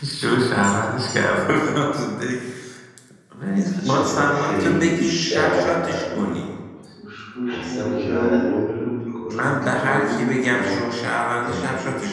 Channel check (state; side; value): identical; both; correlation 1.00